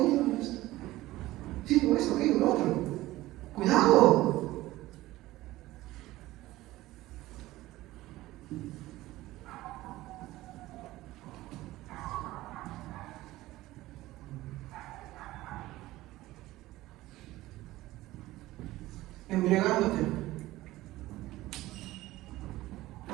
sí, por eso, aquello, lo otro. ¡Cuidado! Embriagándote.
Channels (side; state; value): left; quieter; 17.1 dB